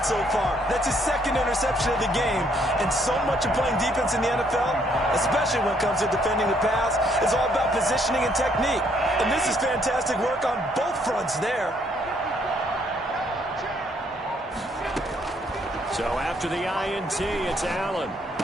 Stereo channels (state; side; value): normal; both; correlation 0.68